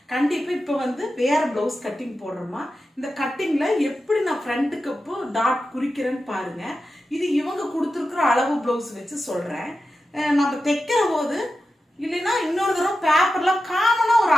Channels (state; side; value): normal; both; correlation 0.92